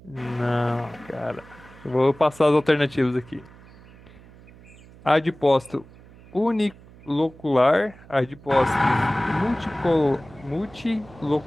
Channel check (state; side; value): noise; right; hum, 22 dB below the sound